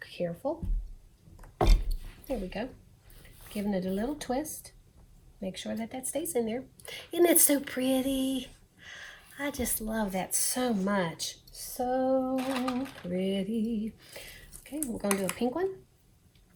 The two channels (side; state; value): both; identical; correlation 1.00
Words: careful. There we go. Giving it a little twist. Make sure that that stays in there. Isn't it so pretty? I just love that so much. So pretty. Okay, we're going to do a pink one.